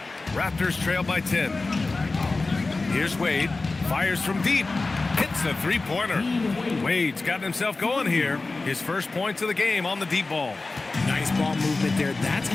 Raptors trail by 10. Here's Wade. Fires from deep. Hits a 3-pointer. Wade's gotten himself going here. His first points of the game on the deep ball. Nice ball movement there. That's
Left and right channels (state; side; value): quieter; right; 3.5 dB